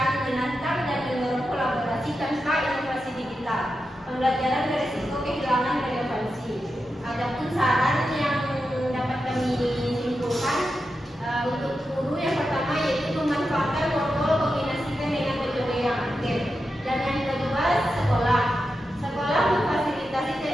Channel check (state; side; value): normal; both; correlation 0.89